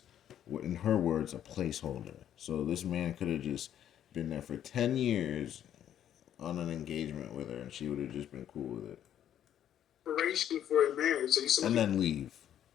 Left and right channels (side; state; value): right; quieter; 10.5 dB